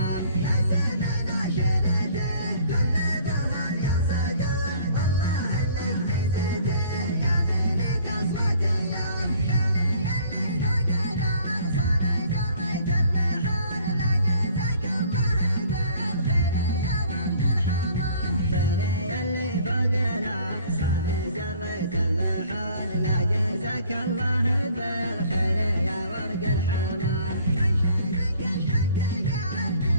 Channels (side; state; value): both; inverted; correlation -0.55